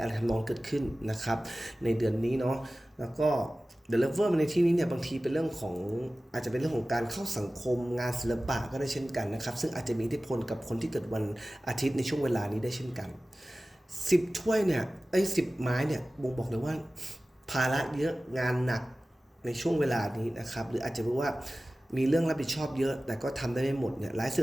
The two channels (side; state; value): both; normal; correlation 0.96